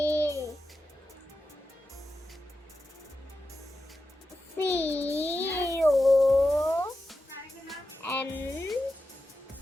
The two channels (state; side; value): normal; both; correlation 0.91